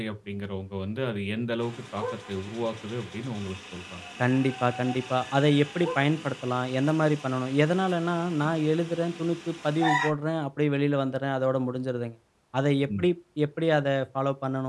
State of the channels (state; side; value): identical; both; correlation 1.00